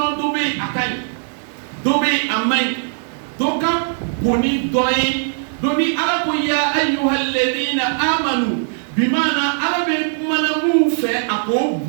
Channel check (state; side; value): silent; left; digital silence